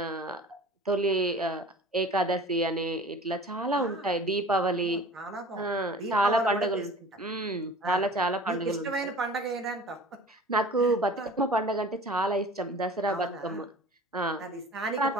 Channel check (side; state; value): both; normal; correlation 0.43